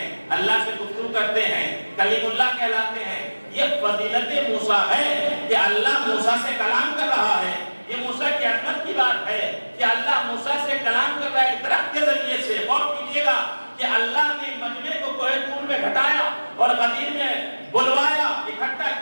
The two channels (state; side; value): inverted; both; correlation -1.00